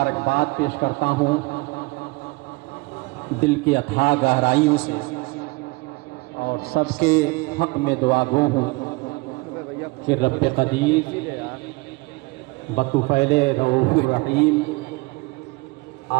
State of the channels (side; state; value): left; quieter; 24.9 dB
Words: پیش کرتا ہوں دل کی اتھاہ گہرائیوں سے، اور سب کے حق میں دعا گو ہوں کہ رب قدیر بطفیل رؤوف الرحیم